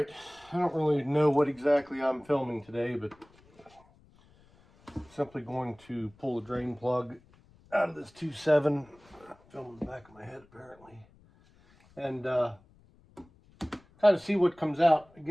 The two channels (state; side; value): noise; left; rumble, 29 dB below the sound